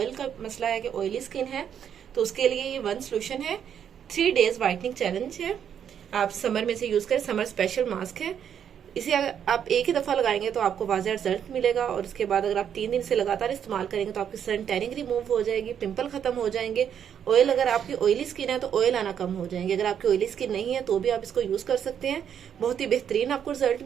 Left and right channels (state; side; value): quieter; left; 8.6 dB